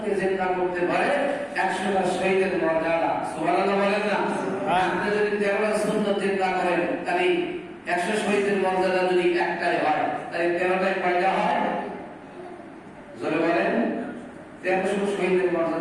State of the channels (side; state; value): both; identical; correlation 1.00